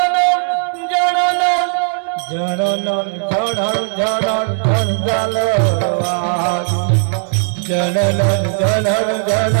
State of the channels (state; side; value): silent; left; 68 dB below the other